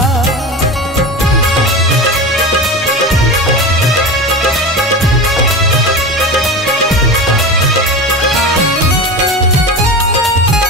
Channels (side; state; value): both; normal; correlation 0.27